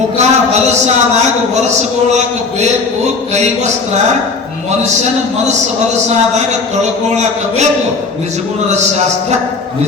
ಹೊಲಸಾದಾಗ ಒರೆಸ್ಕೊಳಕ ಬೇಕು ಕೈವಸ್ತ್ರ. ಮನುಷ್ಯನ ಮನಸ್ಸು ಹೊಲಸಾದಾಗ ತೊಳ್ಕೊಳಕ ಬೇಕು ನಿಜಗುಣದ ಶಾಸ್ತ್ರ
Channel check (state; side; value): quieter; right; 4.2 dB